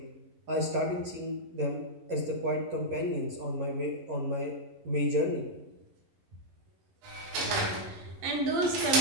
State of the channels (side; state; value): left; late; 11 ms